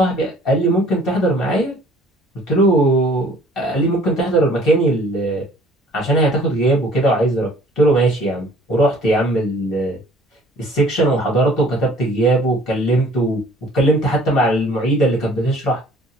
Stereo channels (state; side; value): normal; both; correlation 0.53